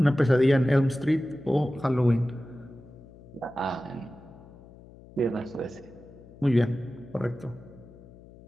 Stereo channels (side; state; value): left; noise; hum, 21 dB below the sound